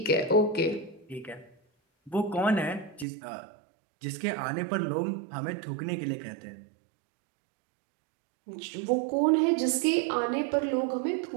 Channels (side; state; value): left; drops out; at 3.1 s